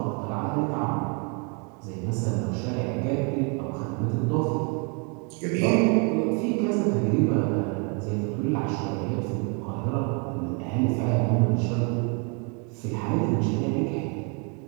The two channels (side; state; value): left; quieter; 35.8 dB